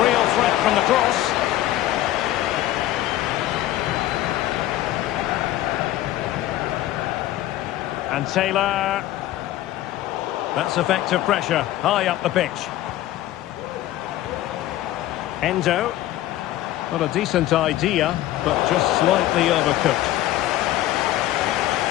real threat from the cross. And Taylor. That's effective pressure, high up the pitch. Endo. Not a decent idea, but just slightly overcooked.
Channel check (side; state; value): right; quieter; 14.4 dB